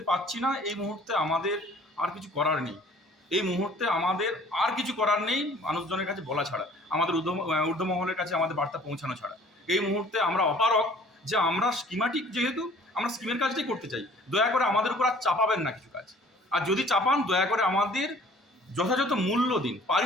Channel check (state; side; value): normal; both; correlation 0.53